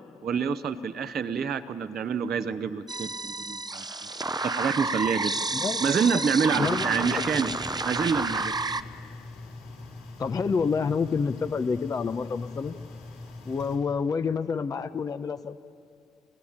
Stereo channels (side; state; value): both; normal; correlation 0.65